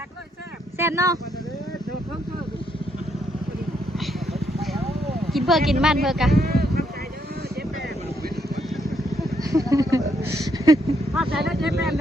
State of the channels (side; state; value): both; normal; correlation 0.75